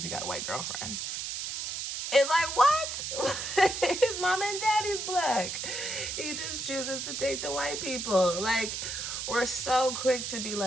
he got a white girlfriend. It's like, what? His mom and daddy's Black. He just chooses to date the white people. Like, we're so quick to be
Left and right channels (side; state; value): right; noise; hiss, 4 dB below the sound